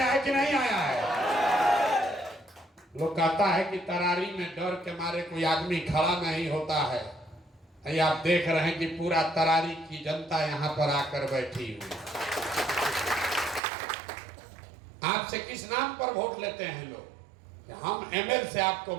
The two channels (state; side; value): drops out; left; at 13.6 s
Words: है कि नहीं आया है? लोग कहता है कि तरारी में डर के मारे कोई आदमी खड़ा नहीं होता है। ये आप देख रहे हैं कि पूरा तरारी की जनता यहाँ पर आकर बैठी हुई। आपसे किस नाम पर वोट लेते हैं लोग? हम एमएल से आपको